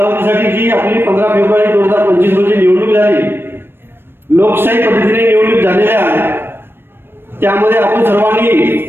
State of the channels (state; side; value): late; left; 0.10 ms